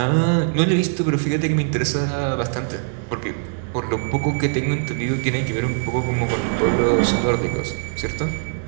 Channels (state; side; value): silent; left; 61 dB below the other